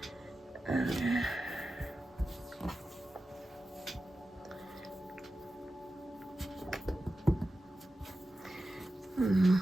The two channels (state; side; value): normal; both; correlation 0.93